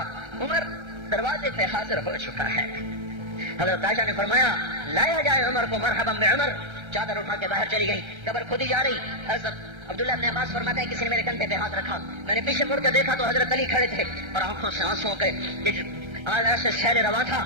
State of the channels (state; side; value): late; left; 1.3 ms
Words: عمر دروازے پہ حاضر ہو چکا ہے۔ حضرت عائشہ نے فرمایا لایا جائے عمر کو، مرحبا بعمر۔ چادر اٹھا کے باہر چلی گئی، قبر کھودی جا رہی۔ حضرت عبداللہ ابن عباس فرماتے ہیں کسی نے میرے کندھے پہ ہاتھ رکھا، میں نے پیچھے مڑ کے دیکھا تو حضرت علی کھڑے تھے اور آنکھوں سے آنسوں کے ایسے شہر رواں تھا،